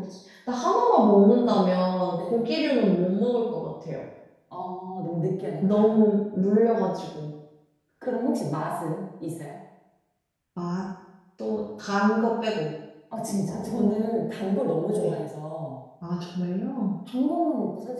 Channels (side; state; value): both; identical; correlation 1.00